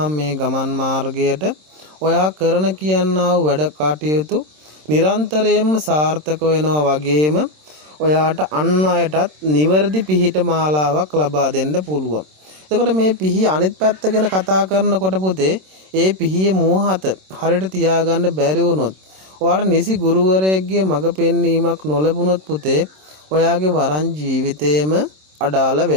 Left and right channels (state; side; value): late; left; 26 ms